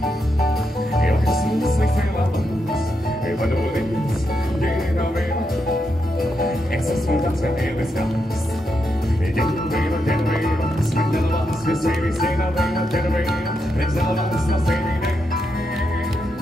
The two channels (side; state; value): both; normal; correlation 0.83